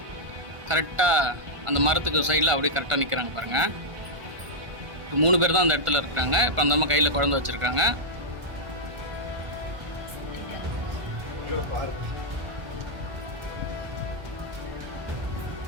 கரெக்டாக அந்த மரத்துக்கு சைடில் அப்படியே கரெக்டாக நிற்கிறாங்க பாருங்கள். இப்போ 3 பேர் தான் அந்த இடத்துல இருக்கிறாங்க. இப்போ அந்த அம்மா கையில் குழந்தை வச்சுருக்காங்க.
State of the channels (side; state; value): left; late; 1.5 ms